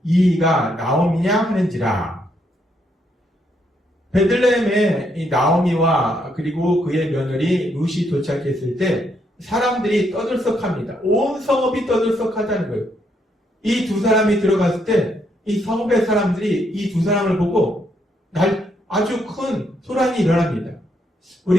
이가 나오미냐 하는지라. 베들레헴에 이 나오미와 그리고 그의 며느리 룻이 도착했을 때 사람들이 떠들썩합니다. 온 성읍이 떠들썩하다는 거예요. 이 두 사람이 들어갔을 때 이 성읍의 사람들이 이 두 사람을 보고 아주 큰 소란이 일어납니다.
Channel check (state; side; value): normal; both; correlation 0.75